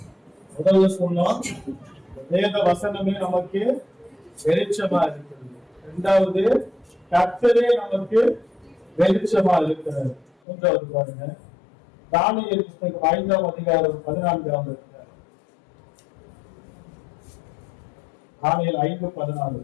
முதல்ல சொன்னோம், வேத வசனமே நமக்கு வெளிச்சமா இருக்கிறது. இரண்டாவது, கர்த்தரே நமக்கு வெளிச்சமா இருக்கிறது. மூன்றாவது பாருங்க, தானியேல் புத்தகம் 5ஆம் அதிகாரம் 14ஆம் அதிகாரம், தானியேல் 5:14,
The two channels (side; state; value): right; drops out; at 10.3 s